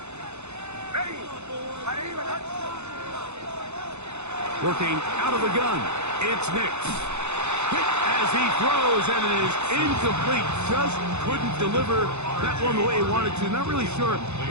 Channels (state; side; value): late; left; 0.82 ms